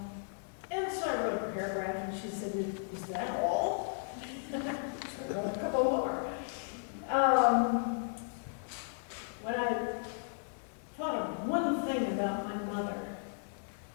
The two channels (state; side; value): silent; right; digital silence